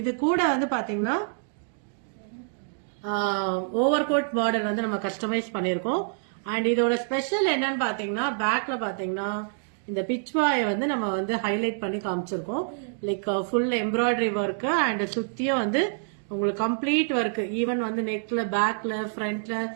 கூட வந்து பாத்தீங்கன்னா ஓவர் கோட் மாடல் வந்து நம்ம கஸ்டமைஸ் பண்ணிருக்கோம். அண்ட் இதோட ஸ்பெஷல் என்னன்னு பாத்தீங்கன்னா பேக்ல பாத்தீங்கன்னா இந்த பிச்வாயை வந்து நம்ம வந்து ஹைலைட் பண்ணி காமிச்சிருக்கோம். Like full embroidery work and சுத்தியும் வந்து உங்களுக்கு கம்ப்ளீட் ஒர்க், ஈவன் வந்து நெக்ல, பேக்ல, ஃப்ரண்ட்ல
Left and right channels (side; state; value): left; silent; digital silence